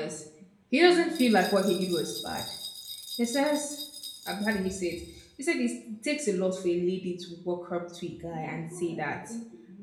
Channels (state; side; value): identical; both; correlation 1.00